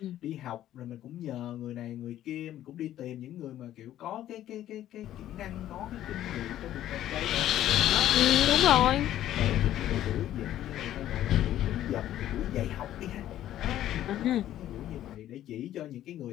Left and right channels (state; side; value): quieter; right; 12.5 dB